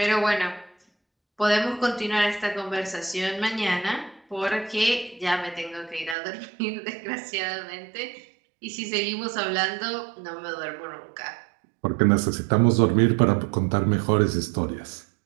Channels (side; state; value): left; drops out; at 6.2 s